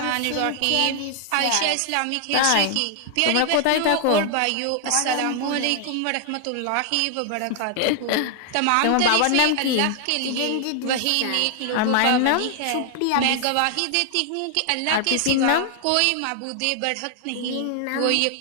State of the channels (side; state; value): both; different; correlation 0.00